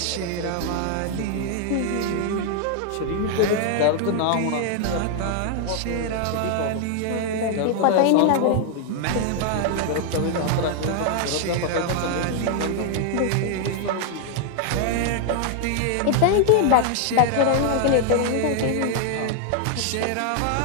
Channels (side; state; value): both; different; correlation 0.00